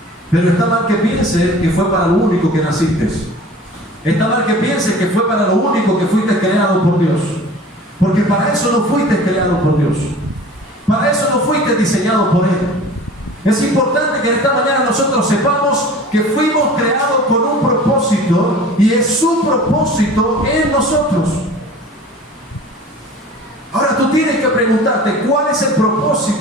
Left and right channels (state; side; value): normal; both; correlation 0.43